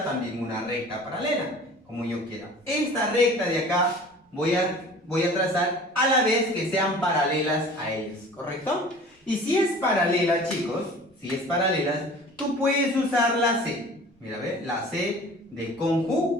también una recta paralela, como yo quiera. Esta recta de acá voy a trazar a la vez que sean paralelas a ellas, ¿correcto? Y si es paralela, chicos, si es paralela, tú puedes usar la C. Mira, ¿ve? La C de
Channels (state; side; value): normal; both; correlation 0.44